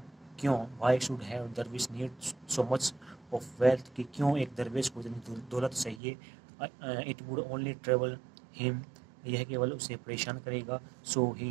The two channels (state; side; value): drops out; left; at 6.0 s